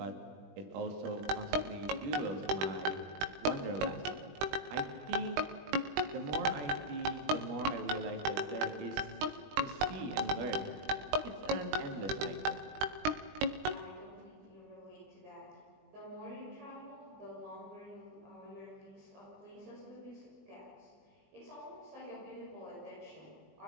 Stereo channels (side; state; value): left; late; 20 ms